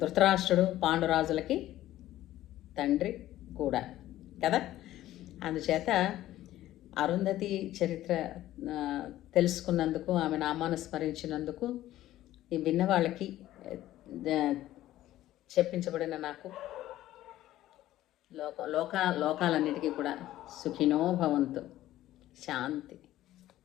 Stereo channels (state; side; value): quieter; right; 14.3 dB